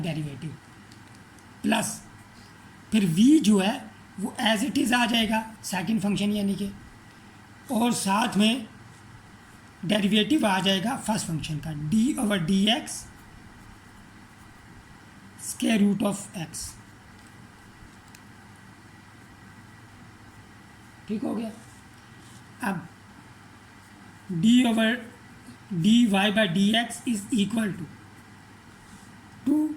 प्लस फिर v जो है वो एज इट इज़ आ जाएगा सेकंड फंक्शन यानी कि, और साथ में डेरिवेटिव आ जाएगा फर्स्ट फंक्शन का d over d x square root of x. ठीक हो गया। अब dy/dx is equal to 2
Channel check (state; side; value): identical; both; correlation 1.00